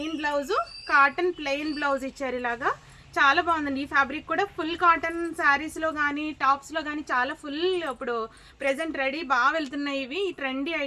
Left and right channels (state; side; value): identical; both; correlation 1.00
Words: blouse, cotton plain blouse ఇచ్చారు. ఇలాగా చాలా బాగుందండి. ఈ ఫ్యాబ్రిక్ కూడా ఫుల్ కాటన్ శారీస్లో కానీ టాప్స్లో కానీ చాలా ఫుల్ ఇప్పుడు ప్రెజెంట్ రెడీ బాగా వెళ్తున్నాయి ఇవి. ఈ ట్రెండీ